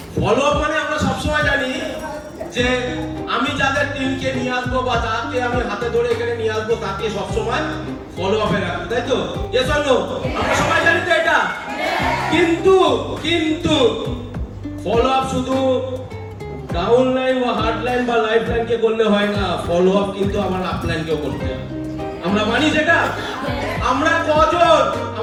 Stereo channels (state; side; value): identical; both; correlation 1.00